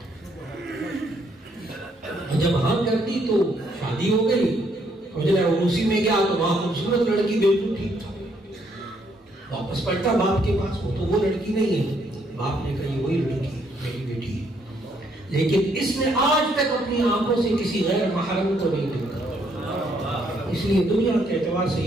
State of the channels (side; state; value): both; normal; correlation 0.71